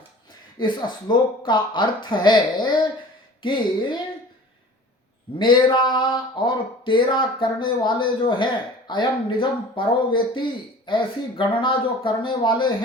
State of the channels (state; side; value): normal; both; correlation 0.43